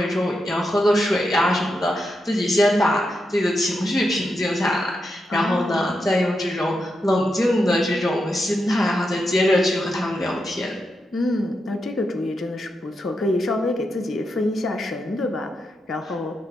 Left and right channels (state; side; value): normal; both; correlation 0.86